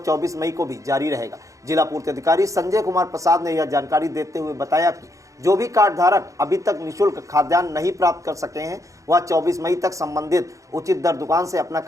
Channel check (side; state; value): left; late; 0.16 ms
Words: 24 मई को भी जारी रहेगा। जिला पूर्ति अधिकारी संजय कुमार प्रसाद ने यह जानकारी देते हुए बताया कि जो भी कार्ड धारक अभी तक निःशुल्क खाद्यान्न नहीं प्राप्त कर सके हैं वह 24 मई तक संबंधित उचित दर दुकान से अपना